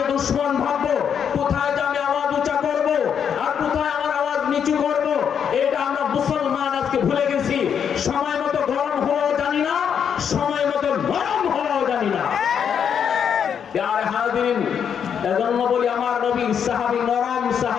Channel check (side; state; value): right; quieter; 7.8 dB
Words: দুশ্মন ভাববো, কোথায় যে আমি আওয়াজ উঁচা করব, আর কোথায় আমার আওয়াজ নিচু করব, এটা আমরা মুসলমান আজকে ভুলে গেছি। সময় মতো গরম হওয়াও জানি না, সময় মতো গরম হওয়াও জানি না। প্যারে হাজিরিন, এজন্য বলি আমার নবী সাহাবী নরম